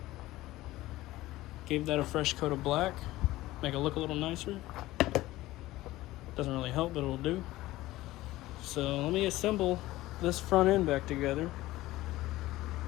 Gave that a fresh coat of black. Make it look a little nicer. Doesn't really help, but it'll do. So let me assemble this front end back together.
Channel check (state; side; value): quieter; right; 17.2 dB